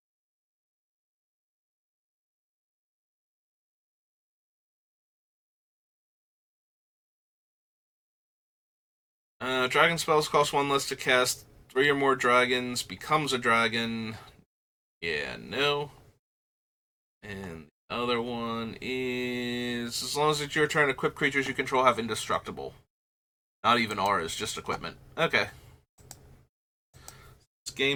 Dragon spells cost 1 less to cast. 3 or more dragons, becomes a dragon. Yeah, no. And the other one is, as long as it's your turn, equipped creatures you control have indestructible. Not even auras, just equipment. Okay. It's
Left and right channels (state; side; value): identical; both; correlation 1.00